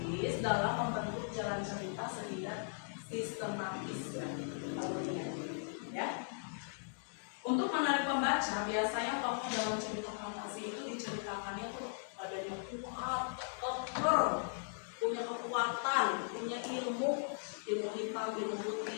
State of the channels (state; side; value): silent; right; digital silence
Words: dalam membentuk jalan cerita sehingga sistematis alurnya. Ya. Untuk menarik pembaca, biasanya tokoh dalam cerita fantasi itu diceritakannya tuh badannya kuat, keker, punya kekuatan, punya ilmu hitam, ilmu